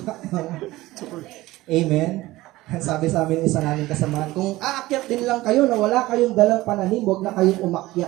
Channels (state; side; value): quieter; left; 18.1 dB